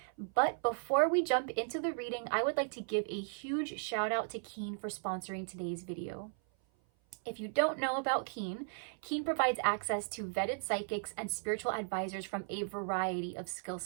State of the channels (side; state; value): left; silent; 54 dB below the other